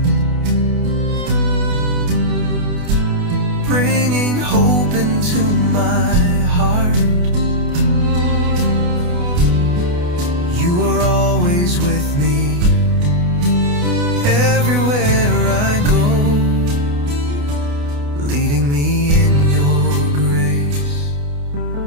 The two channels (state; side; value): late; left; 28 ms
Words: bringing hope into my heart. You are always with me, everywhere I go, leading me in your grace.